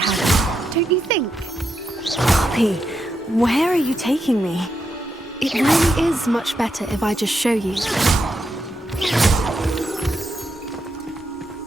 don't you think? Poppy, where are you taking me? It really is much better if I just show you.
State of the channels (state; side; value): normal; both; correlation 0.83